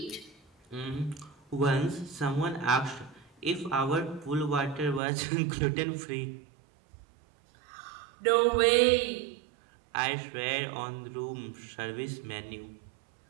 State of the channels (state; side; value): drops out; left; at 5.0 s